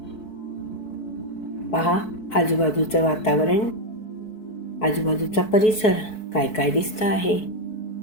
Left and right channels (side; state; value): right; late; 4.6 ms